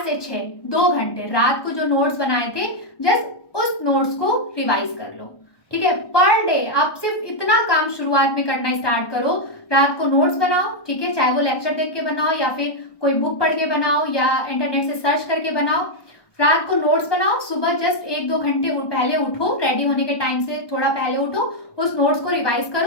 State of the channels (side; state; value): right; late; 1.2 ms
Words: से 6 2 घंटे रात को जो नोट्स बनाए थे जस्ट उस नोट्स को रिवाइज कर लो, ठीक है। पर डे आप सिर्फ इतना काम शुरुआत में करना स्टार्ट करो, रात को नोट्स बनाओ, ठीक है, चाहे वो लेक्चर देख के बनाओ या फिर कोई बुक पढ़ के बनाओ या इंटरनेट से सर्च करके बनाओ, रात को नोट्स बनाओ, सुबह जस्ट 1-2 घंटे पहले उठो, रेडी होने के टाइम से थोड़ा पहले उठो, उस नोट्स को रिवाइज